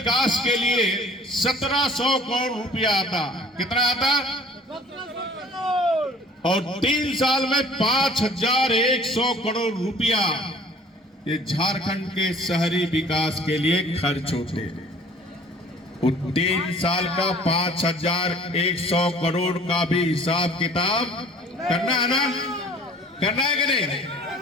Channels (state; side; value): normal; both; correlation 0.50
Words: के लिए 1700 करोड़ रुपया आता, कितना आता? और 3 साल में 5100 करोड़ रुपया ये झारखंड के शहरी विकास के लिए खर्च होते। 3 साल का 5100 करोड़ का भी हिसाब किताब करना है ना, करना है कि नहीं?